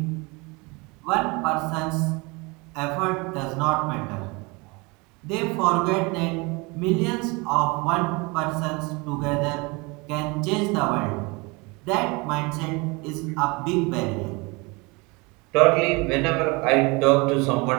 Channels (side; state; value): left; quieter; 27.0 dB